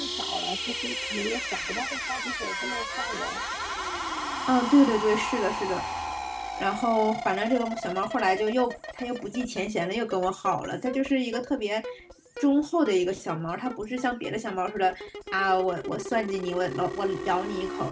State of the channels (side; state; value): both; identical; correlation 1.00